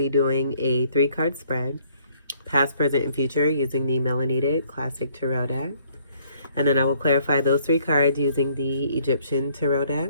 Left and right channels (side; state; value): both; inverted; correlation -0.63